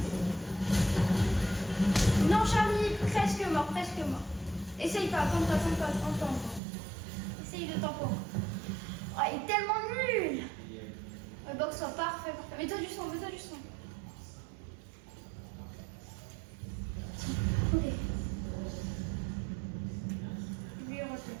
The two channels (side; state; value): left; drops out; at 6.6 s